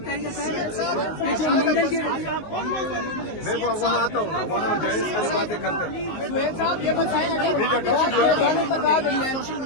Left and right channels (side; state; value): right; late; 19 ms